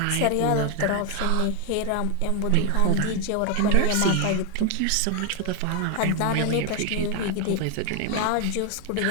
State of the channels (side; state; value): both; different; correlation 0.01